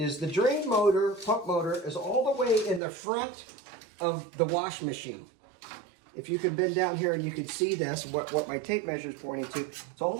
the drain motor, pump motor, is all the way in the front of the wash machine. If you can bend down here and you can see this, what my tape measure is pointing to, it's all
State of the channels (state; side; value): drops out; left; at 2.8 s